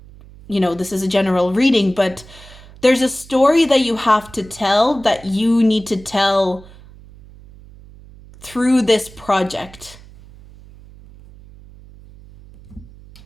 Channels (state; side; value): noise; right; hum, 21 dB below the sound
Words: this is a general reading, but there's a story that you have to tell that you need to tell through this project.